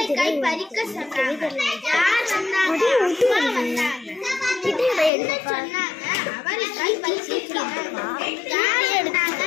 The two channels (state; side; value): drops out; right; at 5.1 s